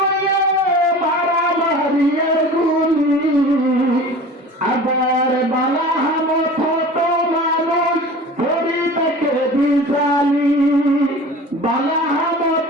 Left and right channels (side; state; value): both; normal; correlation 0.39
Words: মারামারি আর গুলি আবার বালা হামত হতো মানুষ শরীরটাকে বিছানি বালা হামত